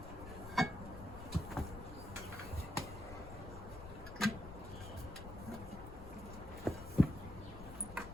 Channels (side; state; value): left; noise; rumble, 11 dB below the sound